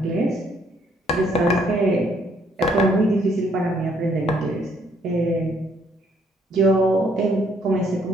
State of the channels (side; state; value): both; normal; correlation 0.67